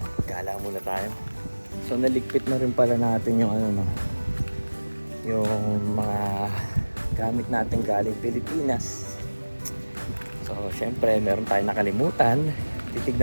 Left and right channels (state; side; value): inverted; both; correlation -1.00